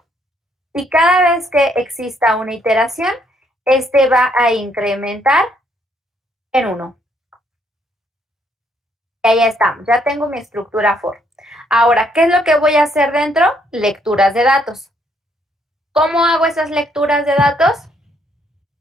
y cada vez que exista una iteración, este va a incrementar en 1. Y ahí estamos, ya tengo mi estructura for. Ahora, ¿qué es lo que voy a hacer dentro? Lecturas de datos. ¿Cómo hago esas lecturas de datos?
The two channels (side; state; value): both; normal; correlation 0.70